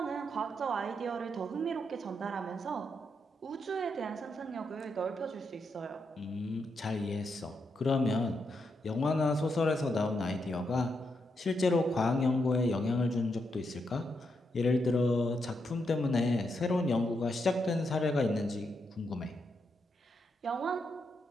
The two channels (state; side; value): normal; both; correlation 0.82